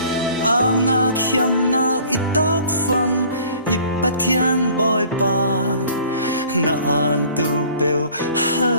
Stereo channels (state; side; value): inverted; both; correlation -0.51